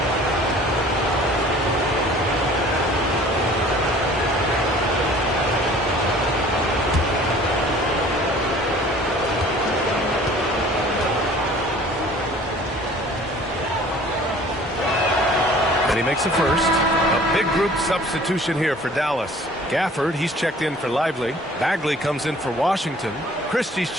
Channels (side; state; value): both; normal; correlation 0.50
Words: And he makes a first. A big group substitution here for Dallas. Gafford, he's checked in for Lively. Bagley comes in for Washington. Christie's